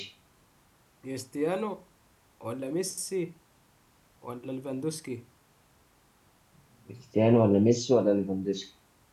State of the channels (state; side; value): identical; both; correlation 1.00